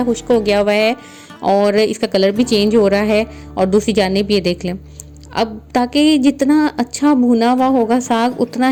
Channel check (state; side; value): identical; both; correlation 1.00